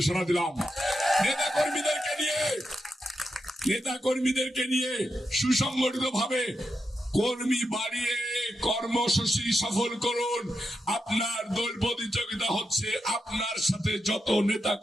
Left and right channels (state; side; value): normal; both; correlation 0.86